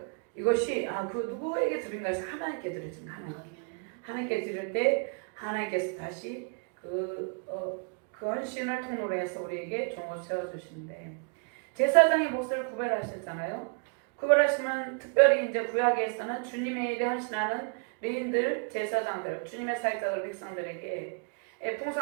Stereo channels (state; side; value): quieter; left; 39.6 dB